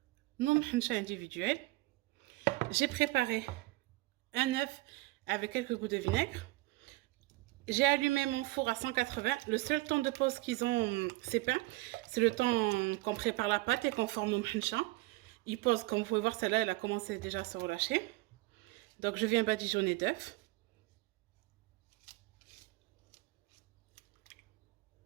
nos mhencha individuels. J'ai préparé un œuf avec quelques gouttes de vinaigre. J'ai allumé mon four à 180. Le seul temps de pause qu'ils ont, ces pains, c'est le temps qu'on prépare la pâte et qu'on forme nos mhencha. Ils posent, comme vous pouvez voir, celle-là, elle a commencé déjà à se relâcher. Donc, je viens badigeonner d'œufs.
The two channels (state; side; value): quieter; left; 21.0 dB